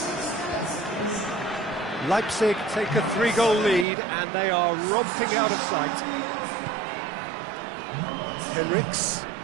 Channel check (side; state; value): left; drops out; at 3.9 s